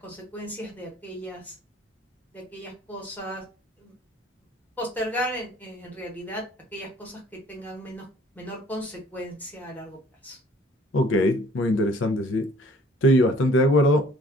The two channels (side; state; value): both; normal; correlation 0.55